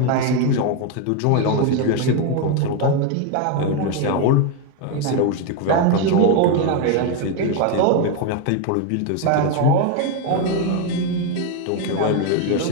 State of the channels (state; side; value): different; both; correlation 0.02